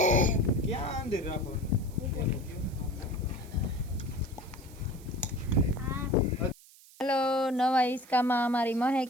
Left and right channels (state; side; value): noise; right; hiss, 23 dB below the sound